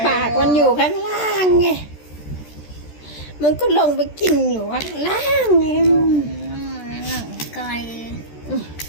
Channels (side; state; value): right; late; 14 ms